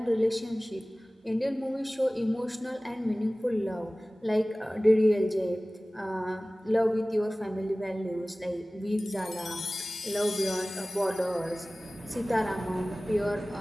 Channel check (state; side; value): normal; both; correlation 0.98